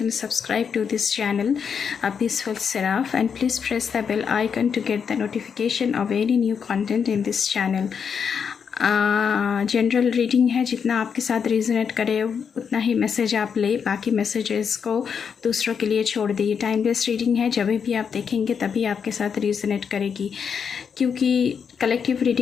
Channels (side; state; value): right; quieter; 6.7 dB